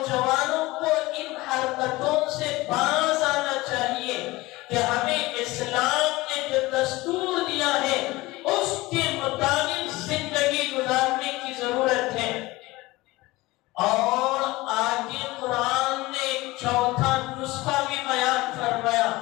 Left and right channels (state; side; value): quieter; right; 20.3 dB